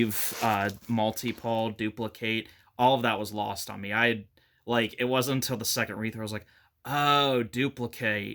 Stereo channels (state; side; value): identical; both; correlation 1.00